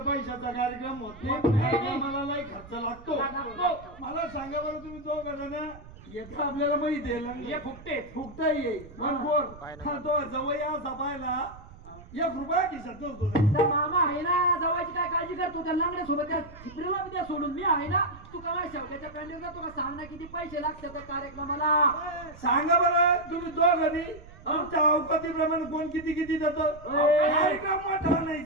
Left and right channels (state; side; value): noise; right; rumble, 19 dB below the sound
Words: पैशाचा कार्यक्रम होत नाही. मला लई खर्च लागतो. मला सांगा बरं तुम्ही तो करा येतं आपल्याला माहिती आहे हे फुकटे फुकता येईल तो जवळ असा पाहिला 1 रुपया खिशात नसतो. तर मामा आहे ना जवळची काय काळजी करतो त्या लंगड्या सोबत त्या झिपरीला बी द्या सोडून. मी आहे ना तू काय शेवट्याच्या पॅन्डलला तुला सांग ना किती पैसे लागतात त्या कार्यक्रमाला. सांगा बरं तुम्ही दोघांनी तुमच्या अवकातीप्रमाणे कोण किती किती देतं. कार्यक्रम मोठा नाही